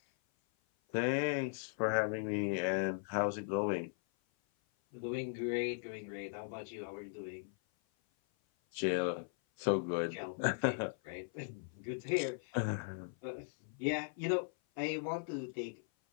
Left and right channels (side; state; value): right; silent; 52 dB below the other